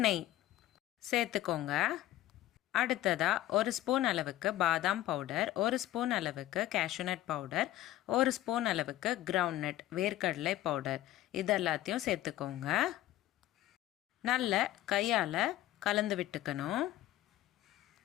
நெய் சேர்த்துக்கோங்க. அடுத்ததாக 1 ஸ்பூன் அளவுக்கு பாதாம் பவுடர், 1 ஸ்பூன் அளவுக்கு கேஷ்யூநட் பவுடர், 1 ஸ்பூன் அளவுக்கு கிரவுண்ட் நட் வேர்க்கடலை பவுடர் இதெல்லாத்தையும் சேர்த்துக்கோங்க. நல்ல கையால் கலந்து விட்டுக்கணும்.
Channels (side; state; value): right; quieter; 14.5 dB